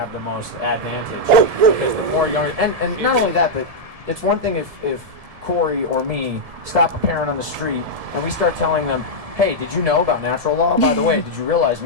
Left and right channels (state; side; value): late; left; 1.7 ms